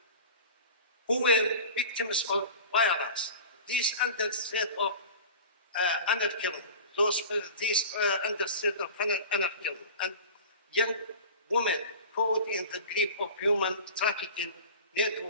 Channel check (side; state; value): both; inverted; correlation -0.36